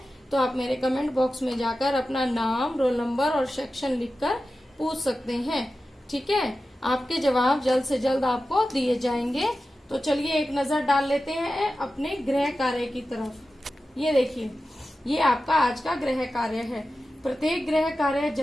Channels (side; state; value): both; normal; correlation 0.93